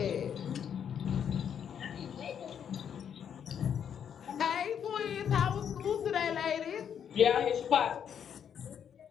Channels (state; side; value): quieter; right; 8.3 dB